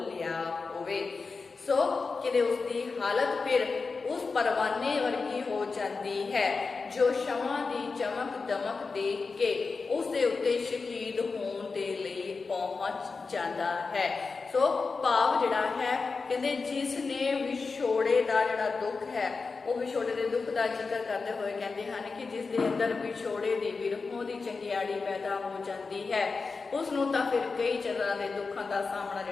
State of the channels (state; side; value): quieter; right; 4.4 dB